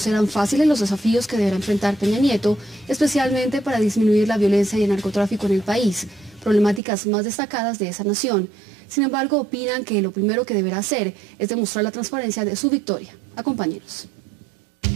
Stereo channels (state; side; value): drops out; left; at 6.8 s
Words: fáciles los desafíos que deberá enfrentar Peña Nieto, especialmente para disminuir la violencia y el narcotráfico en el país, problemáticas más destacadas de esa nación. Sin embargo, opinan que lo primero que deberá hacer es demostrar la transparencia de su victoria. Acompáñenos.